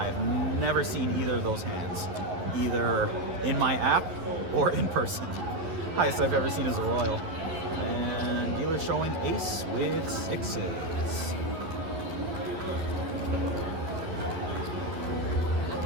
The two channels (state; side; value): late; left; 11 ms